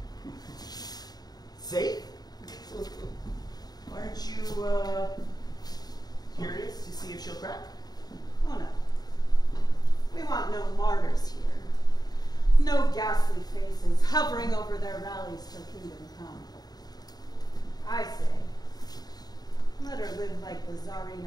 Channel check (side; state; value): right; late; 0.19 ms